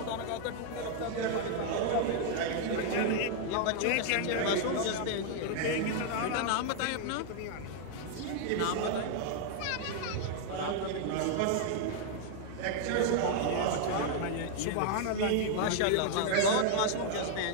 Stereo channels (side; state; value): both; different; correlation 0.00